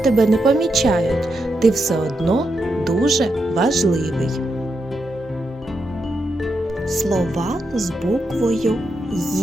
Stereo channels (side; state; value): both; normal; correlation 0.84